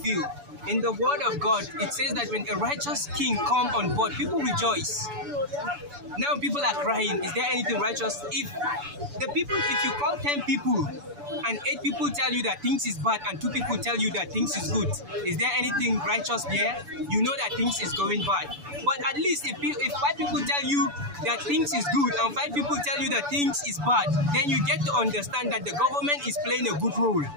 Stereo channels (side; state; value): left; late; 6.9 ms